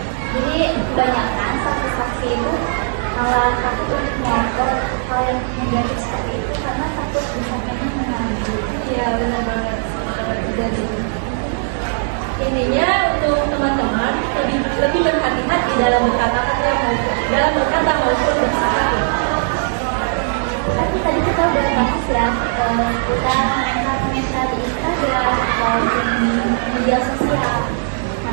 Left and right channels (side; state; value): left; silent; 67 dB below the other